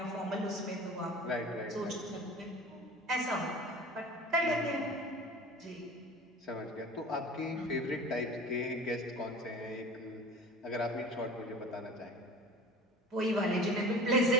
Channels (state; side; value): normal; both; correlation 0.40